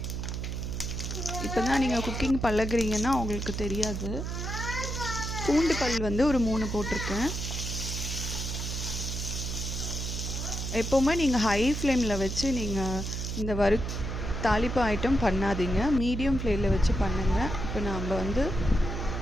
இப்போ தான் நீங்கள் குக்கிங் பழகுறீங்கன்னா அவங்களுக்கு தெரியாது. பூண்டு பல் ஒரு 3 போட்டிருக்கேன். எப்போவுமே நீங்கள் ஹை ஃப்ளேமில் வச்சு நீங்கள் இந்த தாளிப்பு ஐட்டம் பண்ணாதீங்க, மீடியம் ஃப்ளேமில் வச்சு பண்ணுங்கள். இப்போ நம்ம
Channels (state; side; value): noise; right; hum, 4 dB below the sound